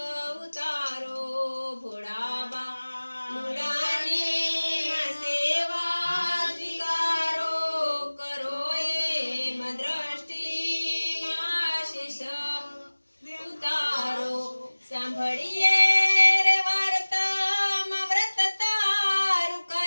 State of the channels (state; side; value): inverted; both; correlation -1.00